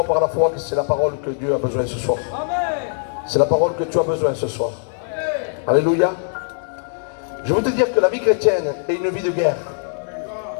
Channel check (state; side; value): silent; right; digital silence